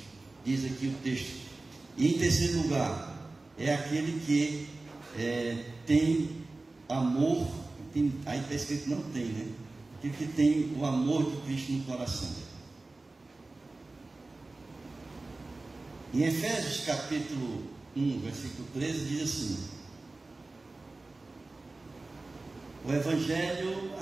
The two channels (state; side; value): quieter; left; 3.2 dB